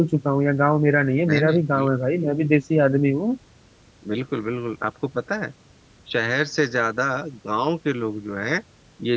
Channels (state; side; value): identical; both; correlation 1.00